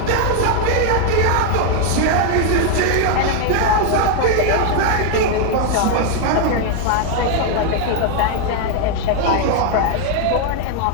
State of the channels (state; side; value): different; both; correlation 0.00